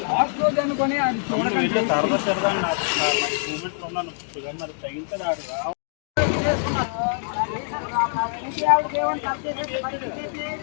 సరదా సరదా నాకు మూమెంట్లో ఉన్నాను మరి తగ్గించదు ఆడు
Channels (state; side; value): silent; right; digital silence